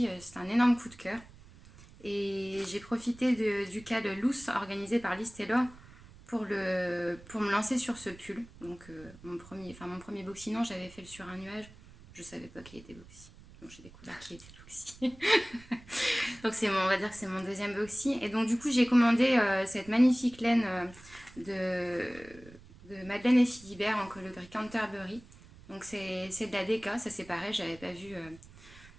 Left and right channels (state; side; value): noise; right; rumble, 21 dB below the sound